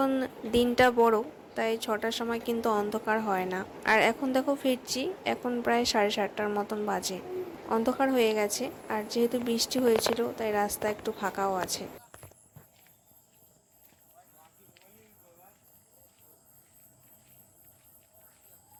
দিনটা বড় তাই 6টার সময় কিন্তু অন্ধকার হয় না। আর এখন দেখো ফিরছি, এখন প্রায় 7:30টার মতন বাজে, অন্ধকার হয়ে গেছে। আর যেহেতু বৃষ্টি হয়েছিল তাই রাস্তা একটু ফাঁকাও আছে।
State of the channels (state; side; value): identical; both; correlation 1.00